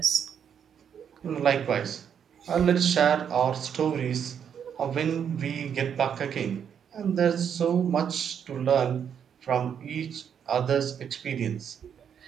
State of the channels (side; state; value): left; quieter; 8.1 dB